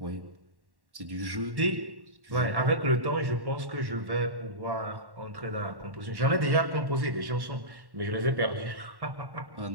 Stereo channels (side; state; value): left; late; 1.1 ms